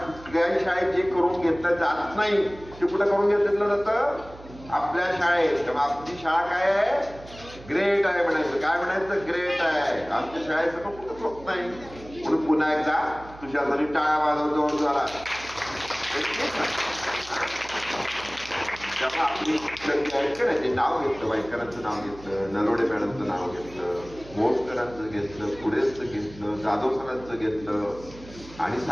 शाळेत जे करून घेतलं जात नाही ते कुठं करून घेतलं जातं? आपल्या शाळेत. तेव्हा आपली शाळा काय आहे? ग्रेट आहे म्हणायचं. काय म्हणायचं? ग्रेट आहे. आमच्या शाळेचं पण कुठंच होत नाही. म्हणून पुन्हा एकदा तुझ्यासाठी टाळ्या वाजवतो जोरात. तेव्हा आपली शिक्षक जे आहेत का नाही ते नाव घेतलं, वायकरांचं नाव घेतलं, नरोडे मॅडमचं नाव घेतलं, मोटकरांचं घेतलं, पुढेचं घेतलं, जाधव सरांचं घेतलं आणि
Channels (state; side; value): noise; right; hum, 18 dB below the sound